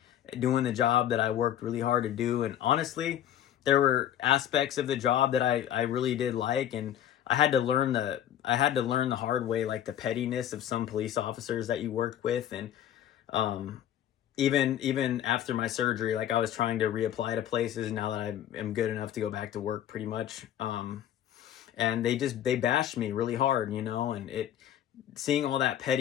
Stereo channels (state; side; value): quieter; right; 11.1 dB